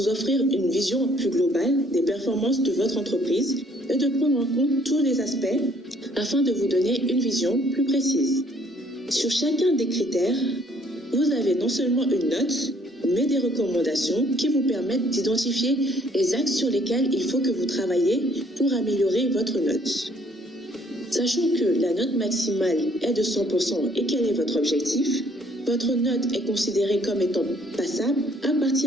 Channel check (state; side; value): normal; both; correlation 0.63